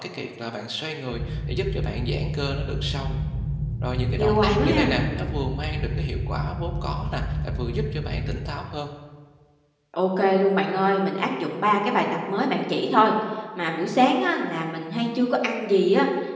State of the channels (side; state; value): both; identical; correlation 1.00